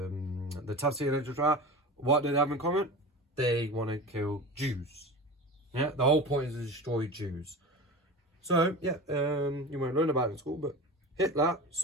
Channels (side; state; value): both; normal; correlation 0.31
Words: Tafsir literature, what do they have in common? They want to kill Jews. Yeah, the whole point is to destroy Jews. So, yeah, you won't learn about it in school, but Hitler,